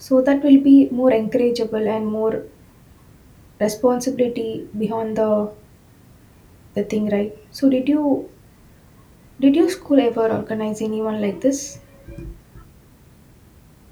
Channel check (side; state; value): both; identical; correlation 1.00